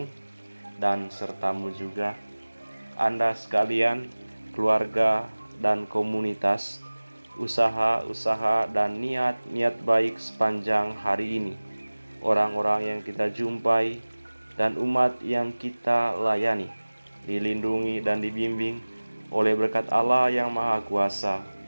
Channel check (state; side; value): inverted; both; correlation -1.00